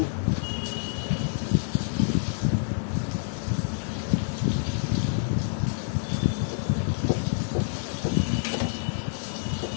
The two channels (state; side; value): silent; right; digital silence